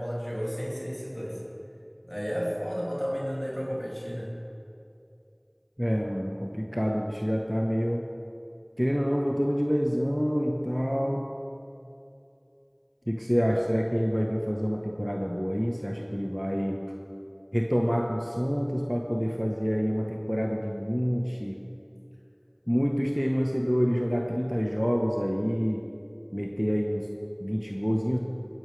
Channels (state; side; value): identical; both; correlation 1.00